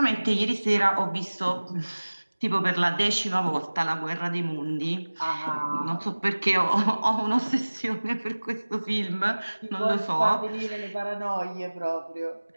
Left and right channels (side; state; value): both; inverted; correlation -1.00